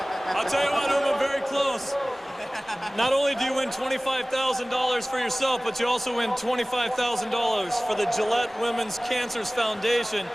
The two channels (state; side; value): normal; both; correlation 0.98